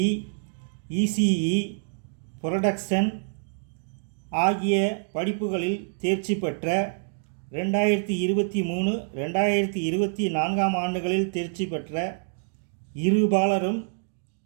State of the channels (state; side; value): silent; left; digital silence